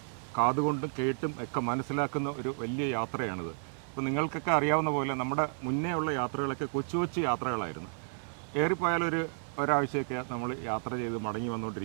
കാതുകൊണ്ടും കേട്ടും ഒക്കെ മനസ്സിലാക്കുന്ന ഒരു വലിയ യാത്രയാണിത്. ഇപ്പോൾ നിങ്ങൾക്കൊക്കെ അറിയാവുന്ന പോലെ നമ്മുടെ മുന്നേ ഉള്ള യാത്രകളൊക്കെ കൊച്ചു കൊച്ചു യാത്രകളായിരുന്നു. ഏറിപ്പോയാലൊരു ഒരാഴ്ചയൊക്കെ നമ്മൾ യാത്ര ചെയ്ത് മടങ്ങി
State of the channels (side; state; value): left; silent; 56 dB below the other